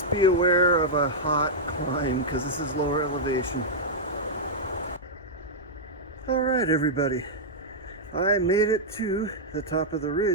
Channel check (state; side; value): noise; left; hum, 21 dB below the sound